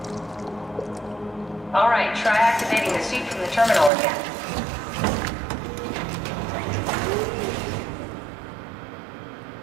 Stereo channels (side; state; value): left; drops out; at 3.9 s